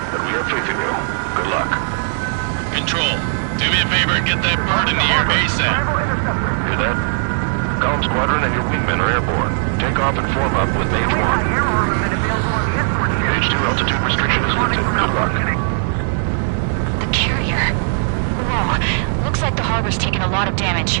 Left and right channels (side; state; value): left; silent; 67 dB below the other